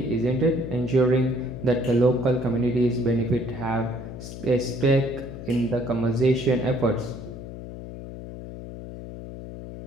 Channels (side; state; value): left; noise; hum, 11 dB below the sound